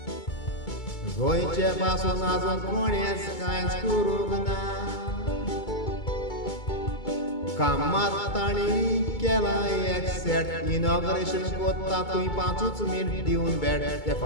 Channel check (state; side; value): late; right; 2.2 ms